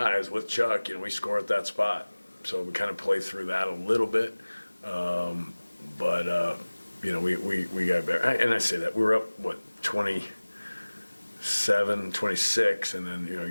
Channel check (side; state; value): both; inverted; correlation -1.00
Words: with Chuck. We score at that spot. So we kind of play through that a little bit. But we got better. And I say that. We were up, 27, 26. And then,